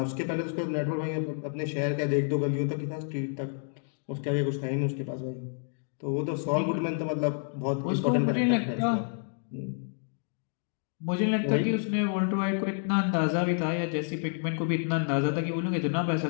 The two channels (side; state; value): right; silent; 58 dB below the other